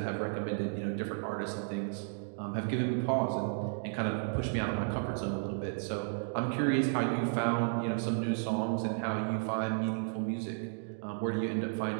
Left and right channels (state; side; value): silent; left; digital silence